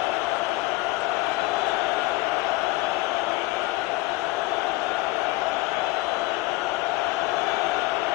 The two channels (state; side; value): quieter; right; 20.0 dB